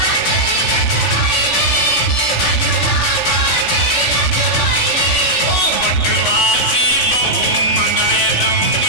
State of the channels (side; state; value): right; late; 3.4 ms